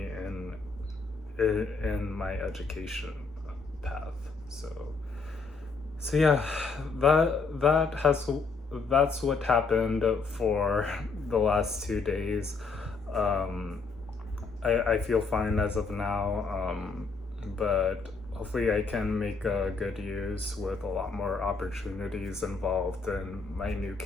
in my education path. So yeah, that's what happened for the last 2 days. Um, I feel fine as of now, but hopefully I can make good use with a lot more opportunities involved in my new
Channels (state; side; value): quieter; right; 4.4 dB